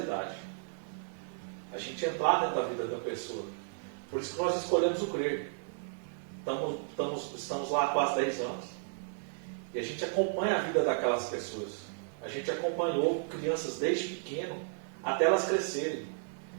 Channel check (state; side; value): silent; left; 55 dB below the other